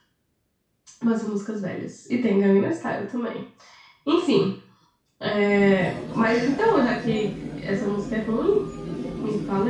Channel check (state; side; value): identical; both; correlation 1.00